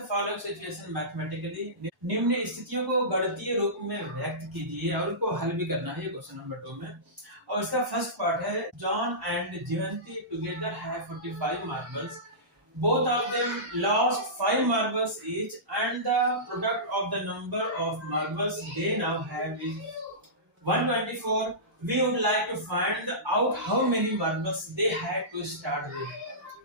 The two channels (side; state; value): both; normal; correlation -0.20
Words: following situation mathematically. निम्न स्थितियों को गणितीय रूप में व्यक्त कीजिए और उनको हल भी करना है ये क्वेश्चन नंबर 2 में। और इसका फर्स्ट पार्ट है, John and Jivanti together have 45 marbles, both of them lost 5 marbles each and the product of the number of marbles they now have is 124. We would like to find out how many marbles they had to start with.